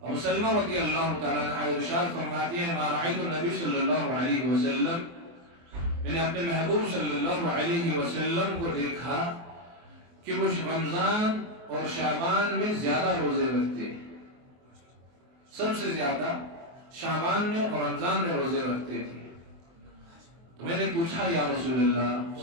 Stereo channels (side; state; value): left; late; 24 ms